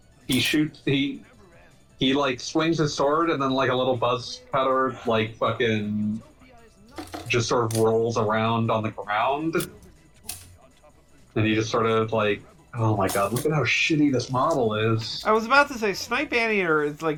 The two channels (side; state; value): both; identical; correlation 1.00